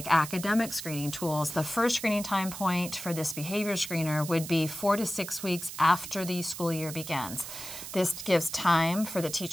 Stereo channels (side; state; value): right; noise; hiss, 10 dB below the sound